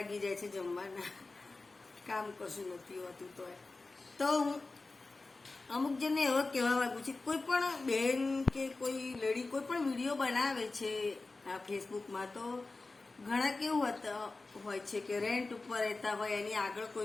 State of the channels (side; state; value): right; quieter; 3.5 dB